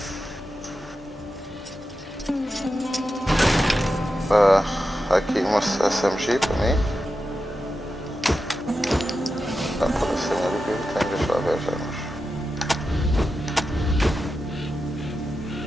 Aqui uma SMG para mim. Dá para ser o que eu tenho, deixa eu ver já.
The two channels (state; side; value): normal; both; correlation 0.90